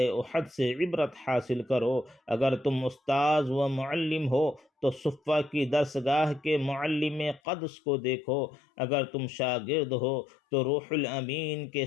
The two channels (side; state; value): right; drops out; at 7.4 s